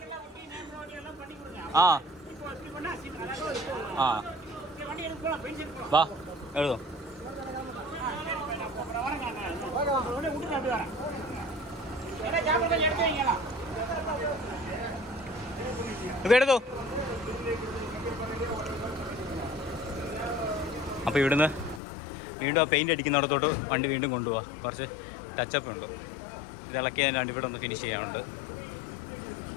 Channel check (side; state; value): right; drops out; at 21.8 s